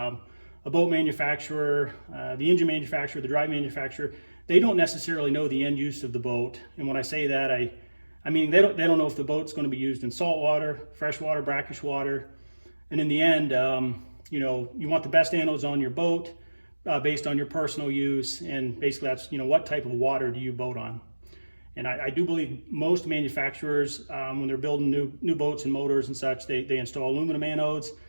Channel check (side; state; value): both; inverted; correlation -1.00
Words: boat manufacturer, the engine manufacturer, the drive manufacturer. They don't necessarily know the end use of the boat. And when I say that, I mean, they don't know if the boat's going to be used in salt water, fresh water, brackish water. And in the end, you want the best anodes on your boat based on your personal use. And basically that's, what type of water do you boat on? And I do believe most manufacturers, when they're building new boats and motors and such, they install aluminum anodes.